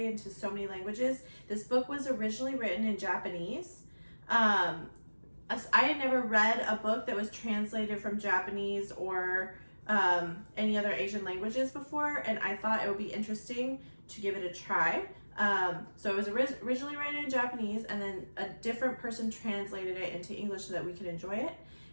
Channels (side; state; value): both; inverted; correlation -1.00